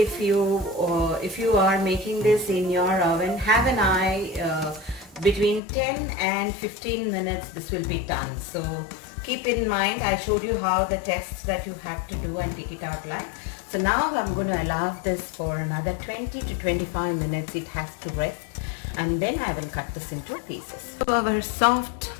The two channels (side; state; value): right; drops out; at 5.6 s